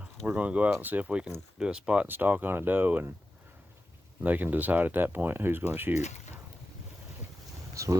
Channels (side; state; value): both; normal; correlation 0.93